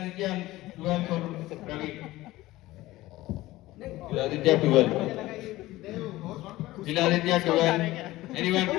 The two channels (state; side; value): quieter; right; 17.5 dB